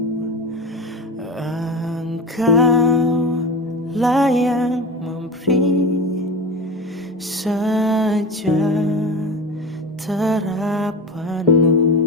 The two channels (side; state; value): both; normal; correlation 0.27